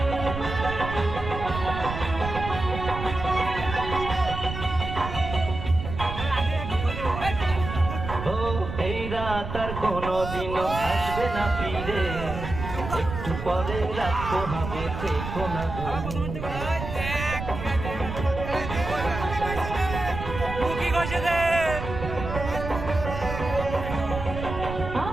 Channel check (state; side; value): noise; right; rumble, 7 dB below the sound